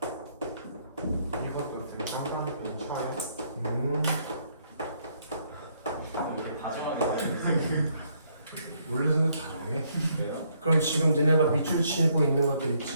이것도 되게 깜깜한 차에. 이게 다정하게 원래는 다정해. 돼요? 그럼 지금 너네가 밑줄 치고 있는 것들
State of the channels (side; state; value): both; inverted; correlation -0.71